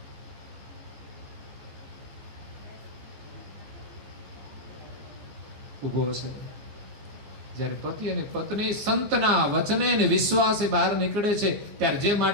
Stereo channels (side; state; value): left; late; 15 ms